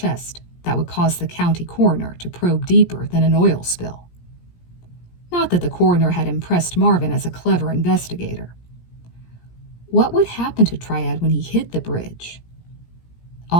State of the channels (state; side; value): late; right; 17 ms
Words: that would cause the county coroner to probe deeper than an oil spill. Not that the coroner had impressed Marvin as a clever investigator. What would happen to Triad when he hit the bridge?